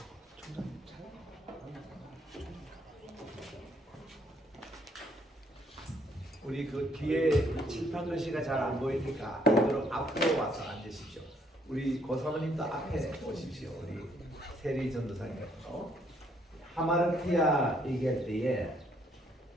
우리 그 뒤에 칠판 글씨가 잘 안 보이니까 그대로 앞으로 와서 앉으십시오. 우리 고사모님도 앞에 오십시오. 우리 세리 전도사님께서 하마르티아 얘기할 때에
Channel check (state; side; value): normal; both; correlation 0.68